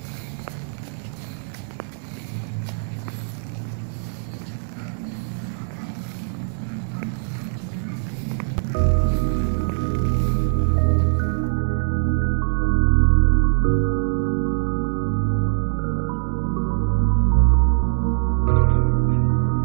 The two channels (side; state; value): left; silent; 64 dB below the other